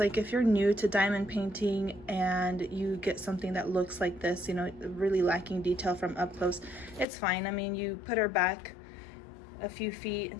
If you're new to diamond painting and you get something that looks like this, you know, really lacking detail from up close, it's fine. I mean, you put her back a few feet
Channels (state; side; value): drops out; right; at 7.1 s